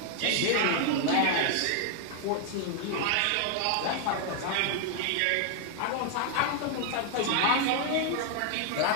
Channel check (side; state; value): both; different; correlation 0.00